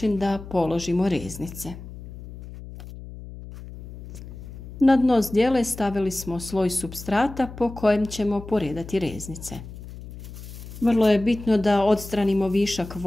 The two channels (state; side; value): noise; left; hum, 14 dB below the sound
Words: da položimo reznice. Na dno zdjele stavili smo sloj supstrata po kojem ćemo poredati reznice. Vrlo je bitno da odstranimo višak